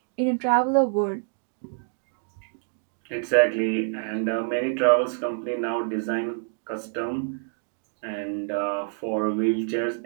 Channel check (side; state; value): left; silent; 60 dB below the other